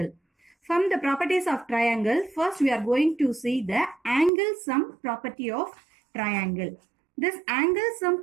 From the properties of triangle, first we are going to see the angle sum property of triangle. This angle sum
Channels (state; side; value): drops out; left; at 4.3 s